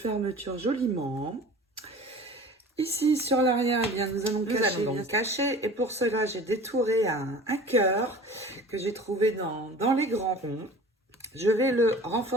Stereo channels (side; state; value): both; normal; correlation 0.42